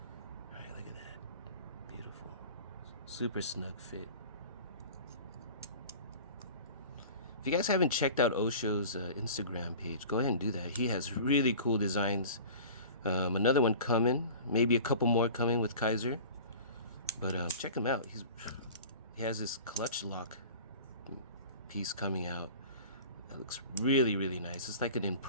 All right, look at that. Beautiful. Super snug fit. If you guys haven't checked out O.SHO's Instagram page, go ahead and do that. He has really cool designs. Another one coming, maybe a couple more coming with Kizer. But check him out. He has this clutch lock piece coming out that looks really, really nice. It's like an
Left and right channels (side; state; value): both; inverted; correlation -0.40